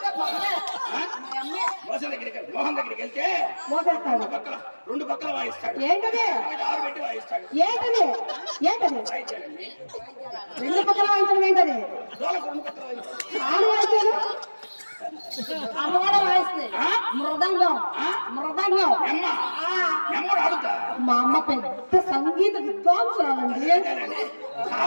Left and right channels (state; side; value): inverted; both; correlation -1.00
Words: మోహన్ దగ్గరికి వెళ్తే మోసేస్తాడు. రెండు పక్కల వాయిస్తాడు. ఏంటది? 6 పెట్టి వాయిస్తాడు. ఏంటది? వాయించాడండి. 2 పక్కల వాయించడం ఏంటది? డోలకు 2 పక్కల వాయిస్తాడు. ఆడు వాయించాడు, అమ్మ కూడా వాయిస్తుంది. మృదంగం నెమ్మడు ఆడుతా. మా అమ్మ పెద్ద సంగీత విద్వాంసురాలండి.